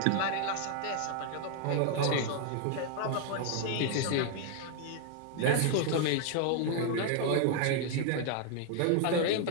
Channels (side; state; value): both; different; correlation 0.00